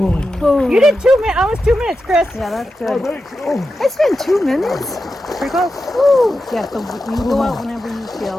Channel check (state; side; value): normal; both; correlation 0.90